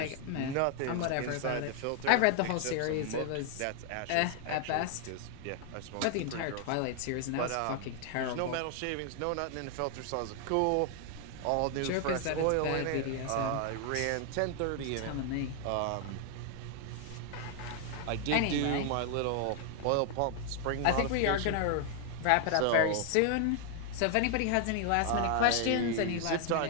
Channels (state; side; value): different; both; correlation 0.00